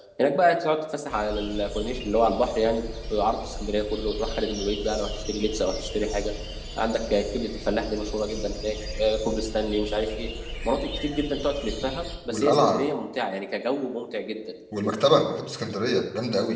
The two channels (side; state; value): both; identical; correlation 1.00